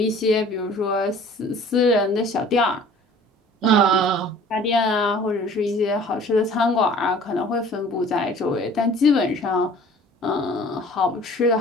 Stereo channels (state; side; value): normal; both; correlation 0.49